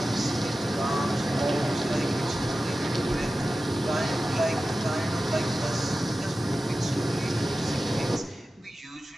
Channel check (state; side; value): normal; both; correlation 0.95